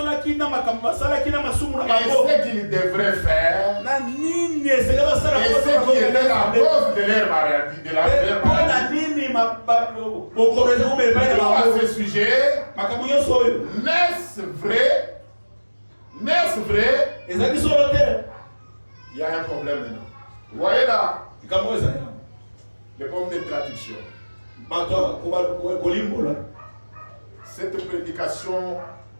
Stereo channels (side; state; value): both; inverted; correlation -1.00